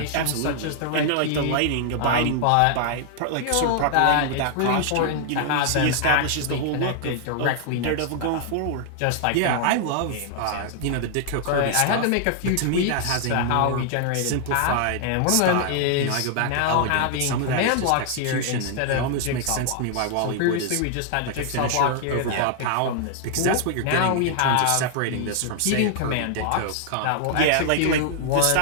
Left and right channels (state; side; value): different; both; correlation 0.00